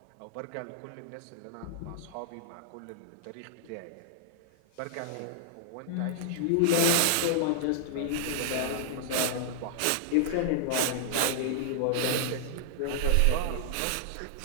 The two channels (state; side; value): different; both; correlation -0.01